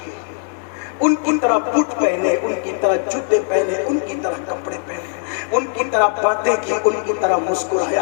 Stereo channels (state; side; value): silent; right; 59 dB below the other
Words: ان کی طرح بوٹ پہنے, ان کی طرح جوتے پہنے, ان کی طرح کپڑے پہنے, ان کی طرح باتیں کی, ان کی طرح